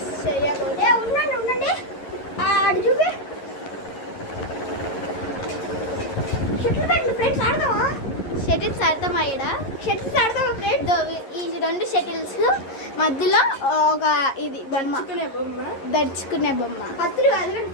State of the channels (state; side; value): late; right; 11 ms